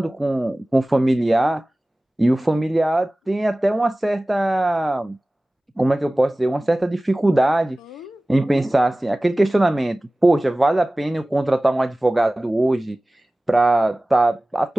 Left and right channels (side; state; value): both; normal; correlation 0.98